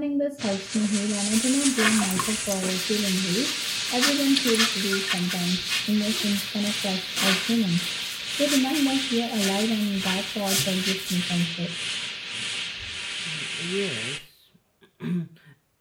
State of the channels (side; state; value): both; identical; correlation 1.00